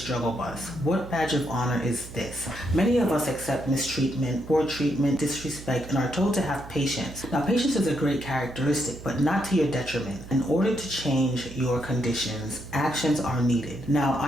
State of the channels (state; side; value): noise; right; hum, 14 dB below the sound